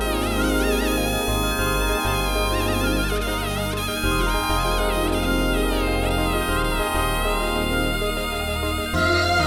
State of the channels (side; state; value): both; identical; correlation 1.00